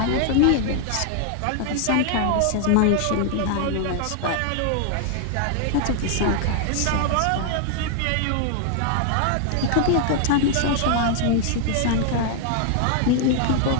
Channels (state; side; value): different; both; correlation 0.00